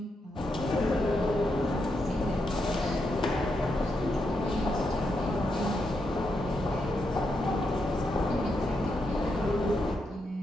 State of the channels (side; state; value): both; normal; correlation 0.83